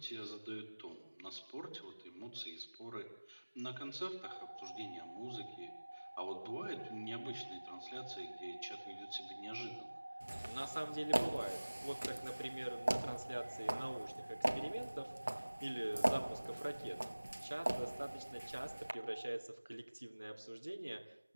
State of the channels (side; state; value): both; inverted; correlation -1.00